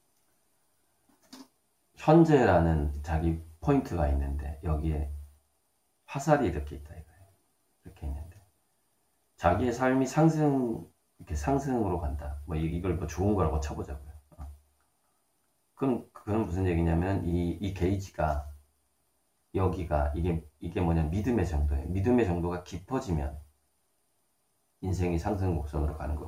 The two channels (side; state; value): both; identical; correlation 1.00